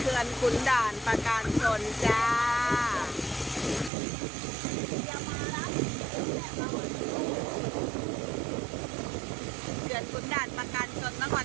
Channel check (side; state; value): left; drops out; at 3.9 s